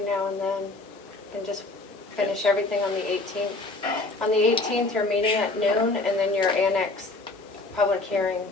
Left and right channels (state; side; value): quieter; right; 3.1 dB